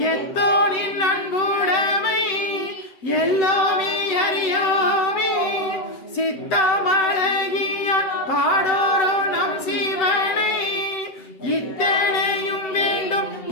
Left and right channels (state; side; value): late; right; 7.9 ms